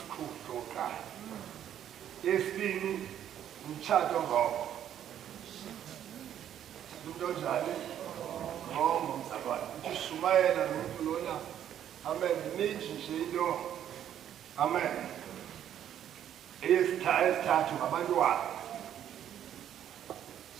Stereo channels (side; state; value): left; quieter; 10.3 dB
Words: sokuqala yesibini umtshato ngoko into njani ngombo mzalwane uthi shumayela nomuntu lona amen ninji nje into amen esithathu ngabantwana